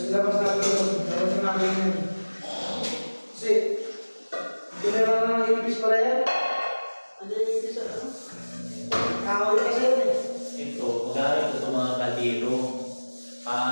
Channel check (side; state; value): both; inverted; correlation -1.00